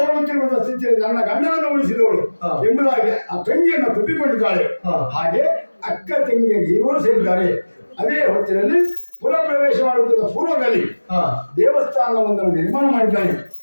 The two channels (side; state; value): both; inverted; correlation -1.00